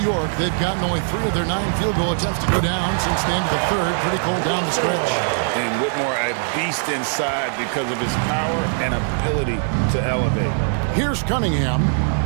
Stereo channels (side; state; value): left; silent; 57 dB below the other